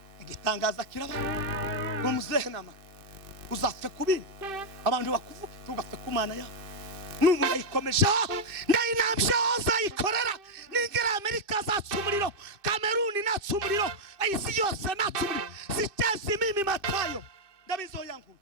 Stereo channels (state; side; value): late; left; 2.6 ms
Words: igitangaza kiraba ngo muze nama uzapfe ku bindi. Abantu bakuvuga tugapfe ku Mana yawe. Nubu yayikomeje ndayinambye uzayikorera. Ningira Amerika zatsumuriro, Kameruni natsumuriro, isi yose natsumuriro. Sitezi mimi Matayo ndabizo yangu